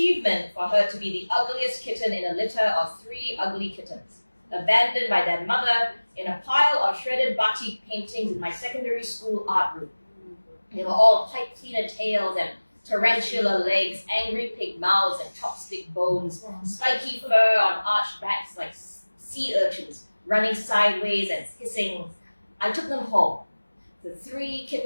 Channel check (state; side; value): inverted; both; correlation -1.00